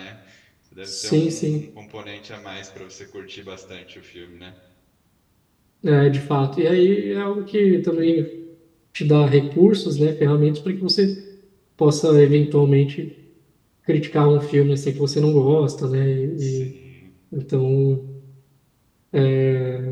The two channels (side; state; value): both; identical; correlation 1.00